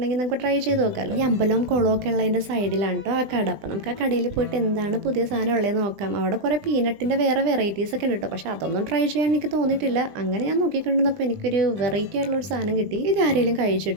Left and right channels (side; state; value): left; late; 20 ms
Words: നമുക്ക് ട്രൈ ചെയ്ത് നോക്കാമല്ലോ. ഈ അമ്പലവും കുളവും ഒക്കെ ഉള്ളതിൻ്റെ സൈഡിലാണ് കേട്ടോ ആ കട. അപ്പം നമുക്ക് ആ കടയിൽ പോയിട്ട് എന്താണ് പുതിയ സാധനം ഉള്ളത് നോക്കാം. അവിടെ കുറേ പീനട്ടിൻ്റെ വേറെ വെറൈറ്റീസ് ഒക്കെ ഉണ്ട് കേട്ടോ. പക്ഷേ അതൊന്നും ട്രൈ ചെയ്യാൻ എനിക്ക് തോന്നിയിട്ടില്ല. അങ്ങനെ ഞാൻ നോക്കിക്കൊണ്ടിരുന്നപ്പോൾ എനിക്കൊരു വെറൈറ്റി ആയിട്ടുള്ള ഒരു സാധനം കിട്ടി. ഇത് ആരെങ്കിലും